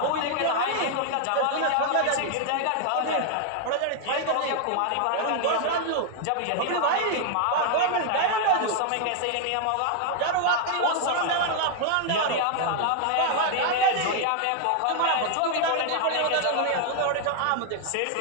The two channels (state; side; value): different; both; correlation 0.00